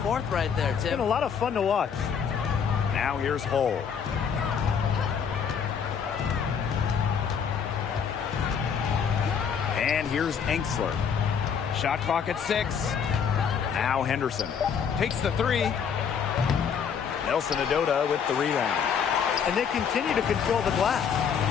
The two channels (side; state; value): right; quieter; 7.0 dB